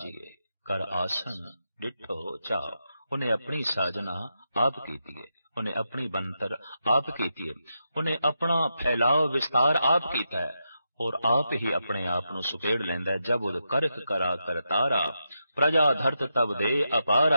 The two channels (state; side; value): inverted; both; correlation -0.86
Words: कर आसन डिठो चाओ। उन्हें अपनी साजना आप कीती है, उन्हें अपनी बनतर आप कीती है, उन्हें अपना फैलाव विस्तार आप कीता है और आप ही अपने आप को सुकेड़ लेंदा है। जब उद करख करा कर तारा, प्रजा धरत तब दे